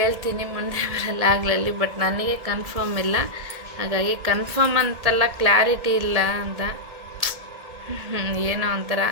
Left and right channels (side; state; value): left; late; 1.8 ms